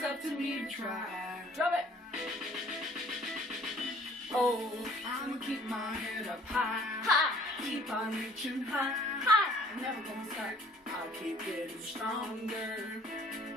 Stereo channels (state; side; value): normal; both; correlation 0.55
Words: to me to try. Drum it. Oh, I'ma keep my head up high. High. Keep on reaching high. High. Never gonna stop. I'll keep getting stronger.